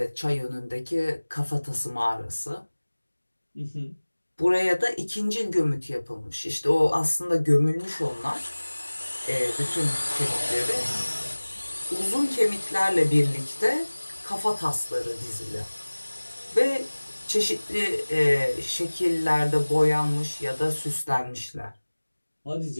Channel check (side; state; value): both; inverted; correlation -1.00